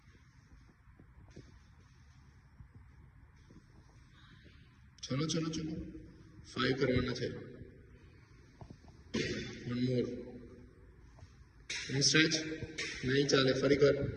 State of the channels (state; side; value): identical; both; correlation 1.00